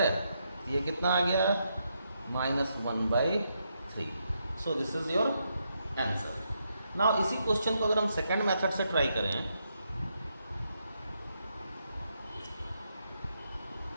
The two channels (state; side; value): inverted; both; correlation -0.80